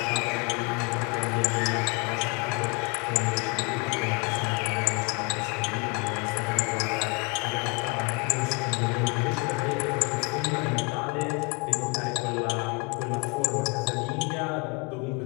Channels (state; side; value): quieter; right; 30.0 dB